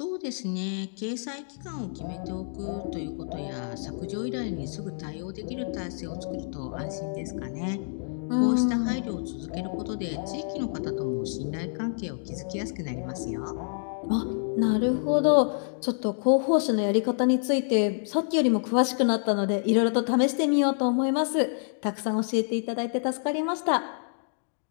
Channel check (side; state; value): right; silent; digital silence